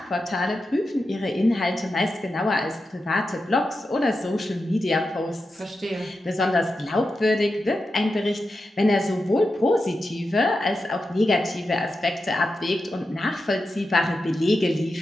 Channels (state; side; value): normal; both; correlation 0.90